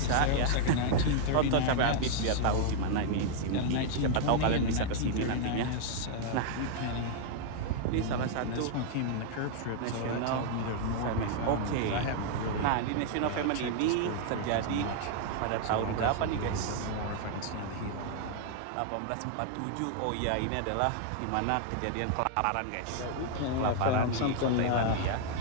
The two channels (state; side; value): different; both; correlation 0.00